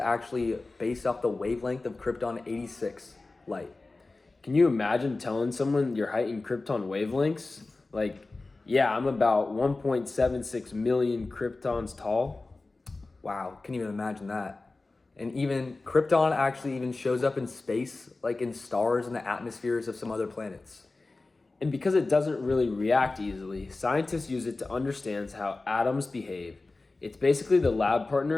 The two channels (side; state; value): right; quieter; 3.4 dB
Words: based off the wavelength of krypton 86 light. Can you imagine telling someone your height in krypton wavelengths? Like, yeah, I'm about 1.76 million kryptons tall. Wow, can't even imagine that. And even krypton actually even shows up in space, like in stars and the atmospheres of some other planets. And because it doesn't really react easily, scientists use it to understand how atoms behave. It's basically the lab